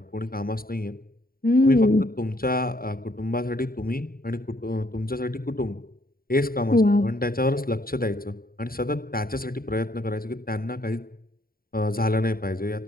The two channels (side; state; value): right; late; 0.43 ms